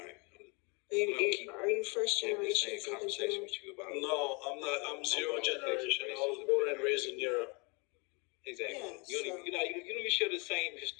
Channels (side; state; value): right; quieter; 31.0 dB